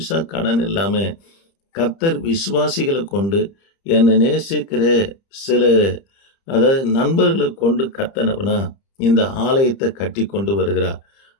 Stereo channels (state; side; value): late; right; 30 ms